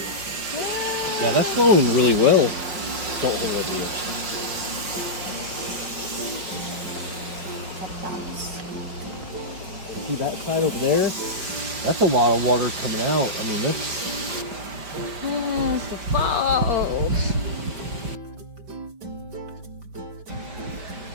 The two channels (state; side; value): late; left; 5.1 ms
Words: Yeah, that's flowing really well. Don't hold it here. See that side over there? That's a lot of water coming out. I mean, that's... Yes, the falls.